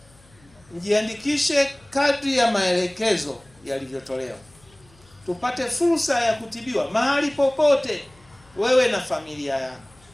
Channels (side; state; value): left; noise; hum, 29 dB below the sound